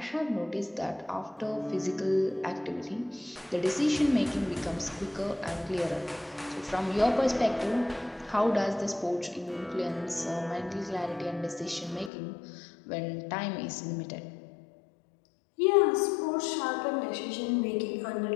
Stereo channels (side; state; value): right; drops out; at 12.1 s